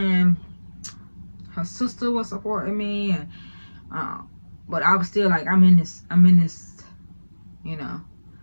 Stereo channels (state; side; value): inverted; both; correlation -1.00